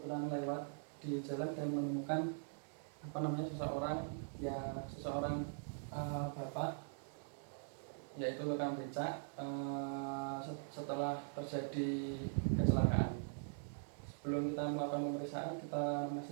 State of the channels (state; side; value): silent; left; digital silence